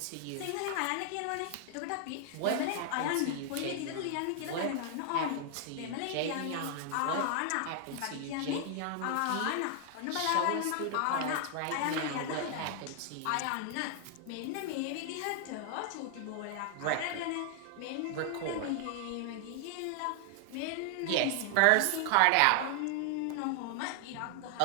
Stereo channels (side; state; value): both; different; correlation 0.00